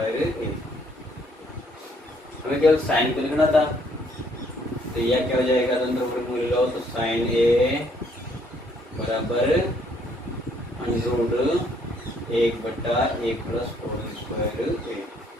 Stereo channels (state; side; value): normal; both; correlation 0.66